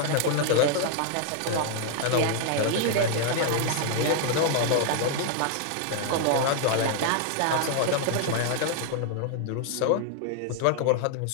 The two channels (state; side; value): different; both; correlation 0.00